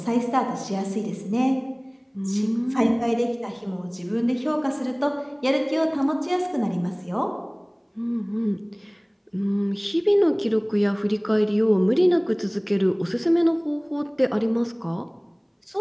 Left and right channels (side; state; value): both; identical; correlation 1.00